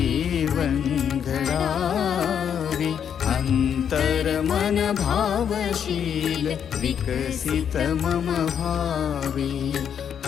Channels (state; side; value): quieter; right; 8.2 dB